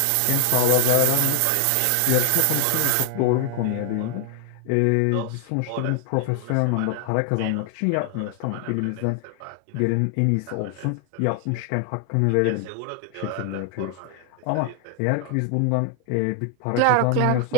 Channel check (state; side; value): different; both; correlation 0.00